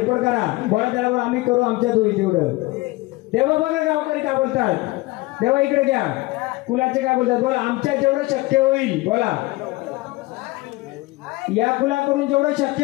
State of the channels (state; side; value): quieter; right; 21.3 dB